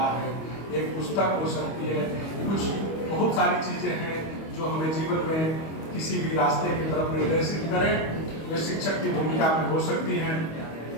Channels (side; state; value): right; late; 25 ms